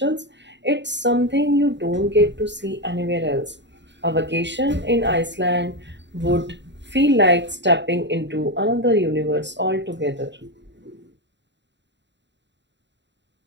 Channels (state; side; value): late; left; 0.52 ms